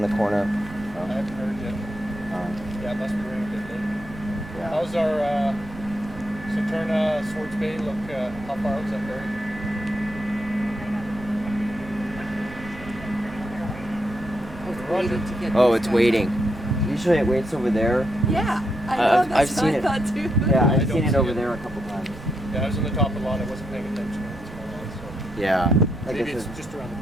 the corner. I haven't heard yet. Yeah, it must be running a bit late. Yeah. How's our Saturna, Swartz Bay look? How far out is that ferry? Waiting to get Oh, these it's guys waiting. out. Usually it waits over there. Yeah, I know. That's I've seen what I it. thought too. Yeah, I I've don't seen it see over it. there a couple times. Yeah, I was on the top of the lot. I wasn't paying attention. So Yeah. Like maybe I it's said, just around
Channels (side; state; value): right; noise; rumble, 16 dB below the sound